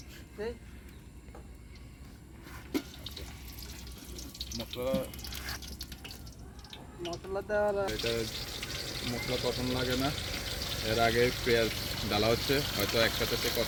মশলা দেওয়া। এটা মশলা তখন লাগে না, এর আগে পেঁয়াজ ডালা হচ্ছে, হয়তো একসাথে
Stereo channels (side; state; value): both; identical; correlation 1.00